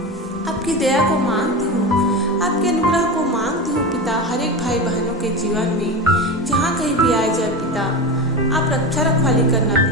आप आपकी दया को मांगती हूँ, आपके अनुग्रह को मांगती हूँ पिता। हर एक भाई बहनों के जीवन में जहाँ कहीं भी आए जाए पिता, आप रक्षा रखवाली करना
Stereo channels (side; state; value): both; normal; correlation 0.23